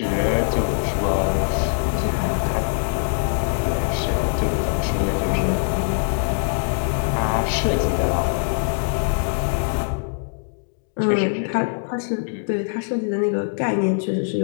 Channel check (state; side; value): silent; right; digital silence